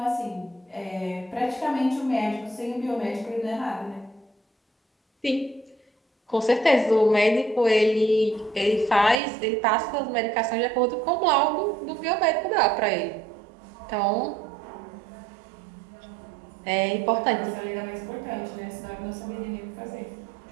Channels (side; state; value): left; drops out; at 9.2 s